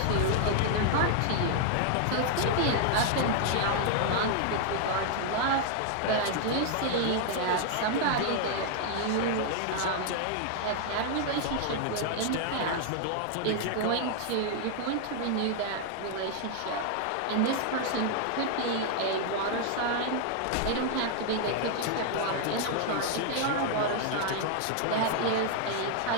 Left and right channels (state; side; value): different; both; correlation 0.00